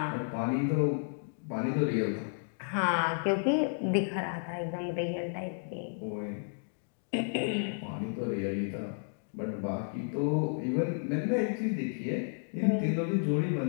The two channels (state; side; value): silent; right; digital silence